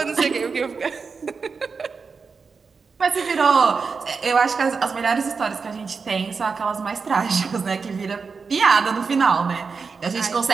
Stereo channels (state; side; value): quieter; left; 5.1 dB